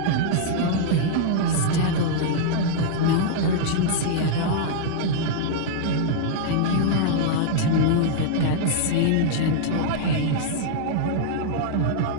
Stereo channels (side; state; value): both; different; correlation -0.02